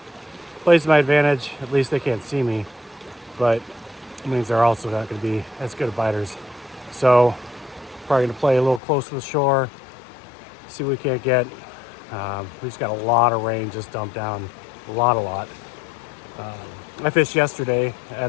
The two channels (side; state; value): right; drops out; at 8.8 s